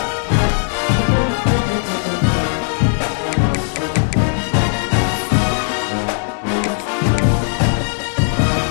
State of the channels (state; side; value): silent; right; digital silence